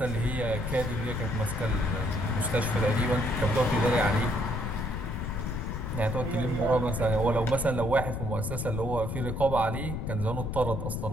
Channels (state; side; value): noise; left; rumble, 4 dB below the sound